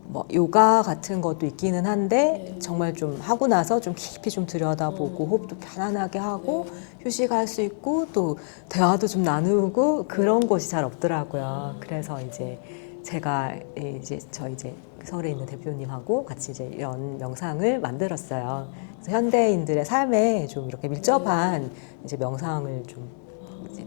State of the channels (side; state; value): right; silent; digital silence